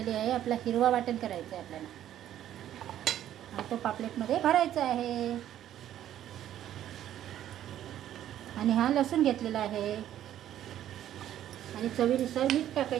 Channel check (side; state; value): left; quieter; 11.7 dB